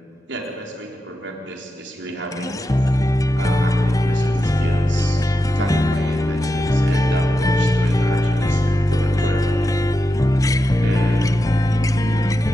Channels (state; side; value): normal; both; correlation 0.89